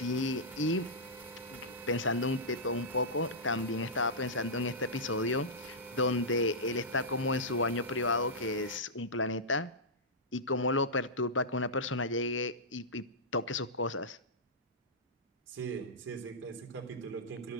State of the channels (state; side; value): normal; both; correlation -0.13